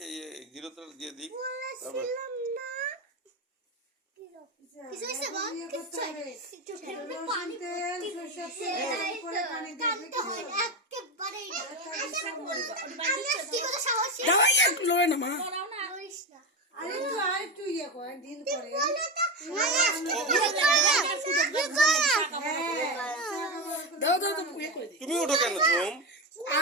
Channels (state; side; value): normal; both; correlation 0.16